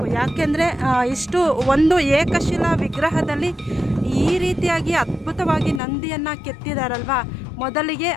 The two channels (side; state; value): right; drops out; at 5.8 s